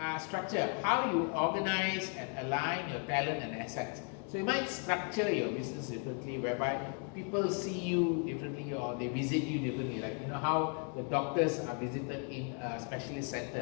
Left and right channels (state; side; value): quieter; right; 39.6 dB